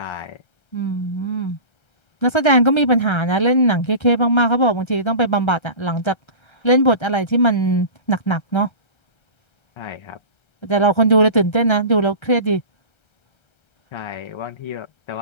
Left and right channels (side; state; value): right; late; 1.3 ms